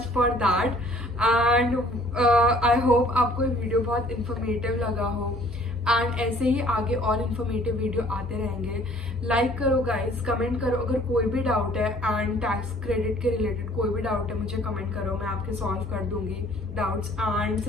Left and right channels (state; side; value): normal; both; correlation 0.57